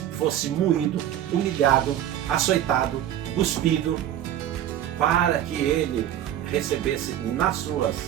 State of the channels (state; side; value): quieter; left; 11.4 dB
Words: fosse moído, humilhado, açoitado, cuspido, para que ele recebesse